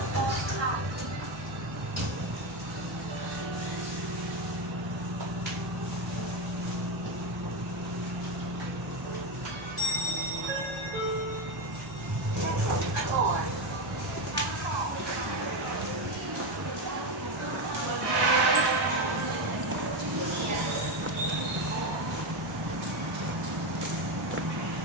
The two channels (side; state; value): both; normal; correlation 0.12